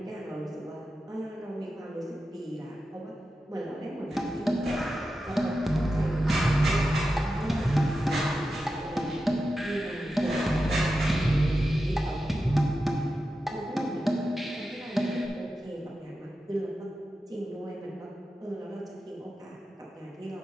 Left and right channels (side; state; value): both; normal; correlation 0.91